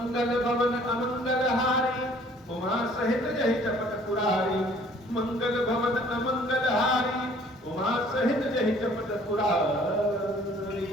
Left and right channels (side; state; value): both; normal; correlation 0.56